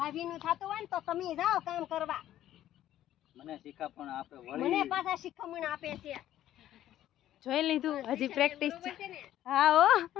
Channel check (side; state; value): right; quieter; 12.6 dB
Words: થતું હોય ને તો તમે જાઓ કામ કરવા. મને શીખામણ આપે, મને પાછા શીખામણ આપે છે. જોઈ લીધું? હજી પ્રેક્ટિસ. હા હો,